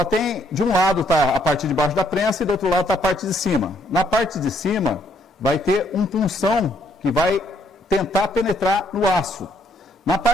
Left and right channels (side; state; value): both; normal; correlation 0.68